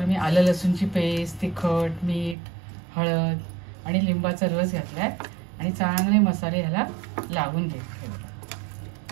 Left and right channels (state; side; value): drops out; left; at 2.4 s